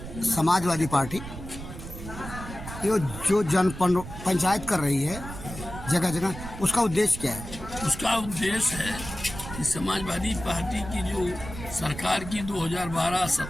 समाजवादी पार्टी ये जो जन पंचायत कर रही है जगह जगह, उसका उद्देश्य क्या है? उसका उद्देश्य है कि समाजवादी पार्टी की जो सरकार की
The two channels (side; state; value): right; noise; rumble, 11 dB below the sound